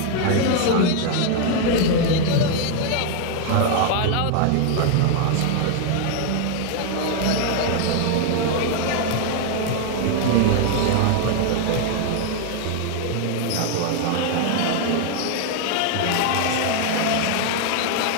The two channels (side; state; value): both; different; correlation 0.00